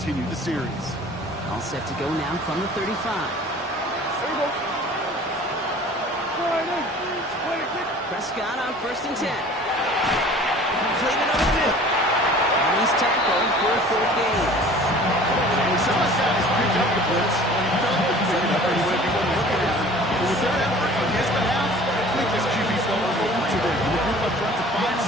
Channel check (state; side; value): normal; both; correlation 0.46